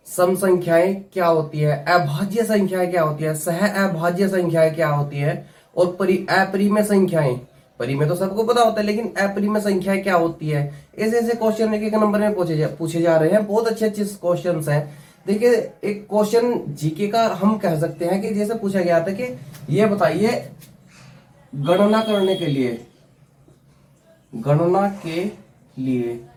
सम संख्याएं क्या होती है, अभाज्य संख्याएं क्या होती है, सह अभाज्य संख्याएं क्या होती है, और अपरिमेय संख्याएं। परिमेय तो सबको पता होता है, लेकिन अपरिमेय संख्याएं क्या होती है। ऐसे ऐसे क्वेश्चन एक एक नंबर में पूछे जा रहे हैं। बहुत अच्छे अच्छे क्वेश्चन हैं। देखिए, एक क्वेश्चन जीके का हम कह सकते हैं कि जैसे पूछा गया था कि ये बताइए, गणना करने के लिए, गणना के लिए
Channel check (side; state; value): both; identical; correlation 1.00